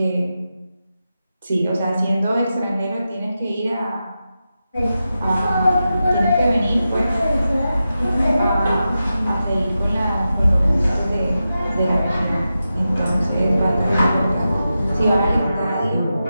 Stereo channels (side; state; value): both; inverted; correlation -0.91